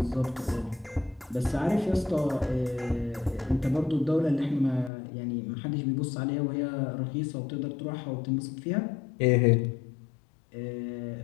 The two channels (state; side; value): drops out; right; at 4.9 s